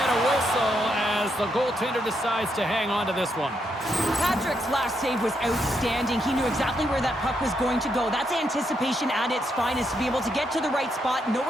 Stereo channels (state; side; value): normal; both; correlation 0.79